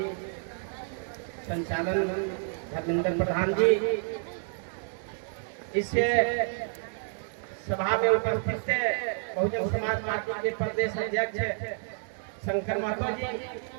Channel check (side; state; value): left; silent; 58 dB below the other